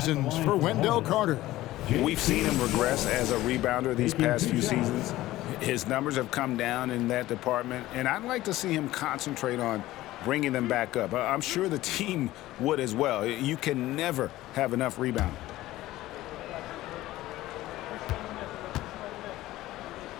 for Wendell Carter. We've seen him regress as a rebounder these past few seasons. His numbers have come down in that department, and I'd like to see him concentrate on bringing them back up. I'm sure the team would as well. You can never have enough rebound.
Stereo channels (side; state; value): right; quieter; 16.3 dB